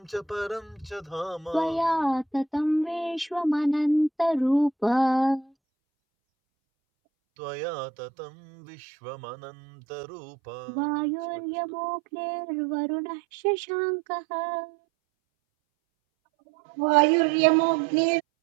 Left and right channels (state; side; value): drops out; left; at 5.5 s